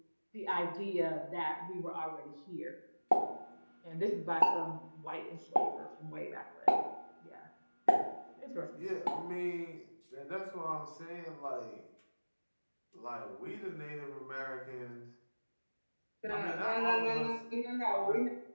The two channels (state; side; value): inverted; both; correlation -1.00